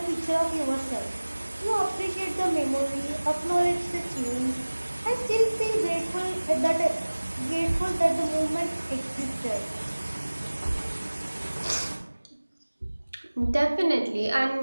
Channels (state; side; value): inverted; both; correlation -1.00